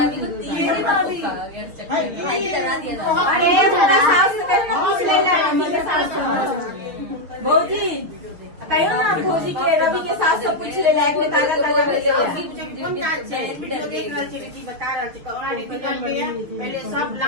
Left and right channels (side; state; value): left; late; 6.9 ms